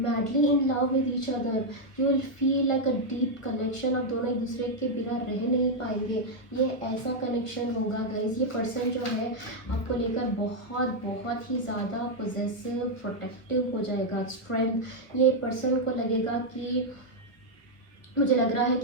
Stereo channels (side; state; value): right; late; 1.2 ms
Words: in love with each other. You will feel like a deep connection. आप दोनों एक दूसरे के बिना रह नहीं पाएंगे. ये ऐसा कनेक्शन होगा गाइज. ये पर्सन जो है आपको लेकर बहुत बहुत ही ज़्यादा पोजेसिव, प्रोटेक्टिव हो जाएगा. स्ट्रेंथ, ये पर्सन को लगेगा कि, मुझे लग रहा है